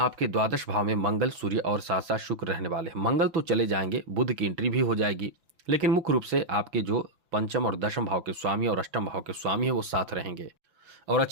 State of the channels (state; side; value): late; left; 6.1 ms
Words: द्वादश भाव में मंगल, सूर्य और साथ साथ शुक्र रहने वाले हैं। मंगल तो चले जाएंगे, बुध की एंट्री भी हो जाएगी, लेकिन मुख्य रूप से आपके जो पंचम और दशम भाव के स्वामी और अष्टम भाव के स्वामी है वो साथ रहेंगे। और